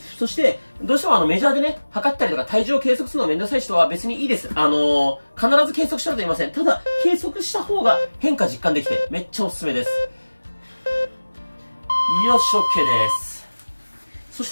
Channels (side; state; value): both; inverted; correlation -1.00